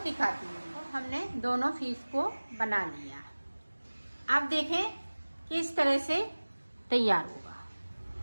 हूँ। तो हमने दोनों पीस को बना लिया। अब देखें किस तरह से तैयार होगा।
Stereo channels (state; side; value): inverted; both; correlation -1.00